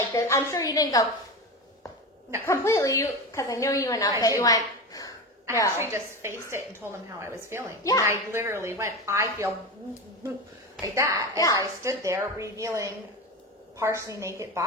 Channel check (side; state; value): both; normal; correlation 0.23